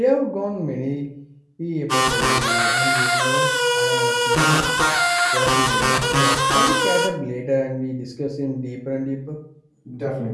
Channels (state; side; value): identical; both; correlation 1.00